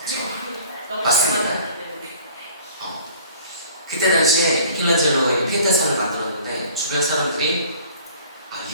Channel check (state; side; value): inverted; both; correlation -0.50